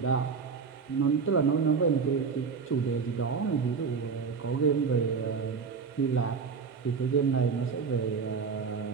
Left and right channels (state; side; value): quieter; left; 5.5 dB